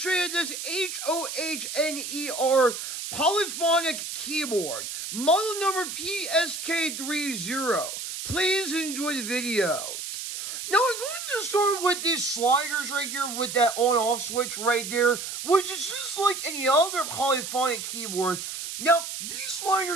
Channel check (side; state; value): right; noise; hiss, 6 dB below the sound